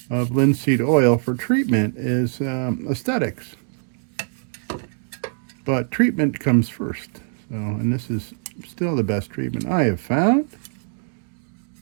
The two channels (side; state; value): left; silent; 63 dB below the other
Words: of linseed oil for treatment is aesthetics. But treatment comes first. So, and this is still the best treatment I have found.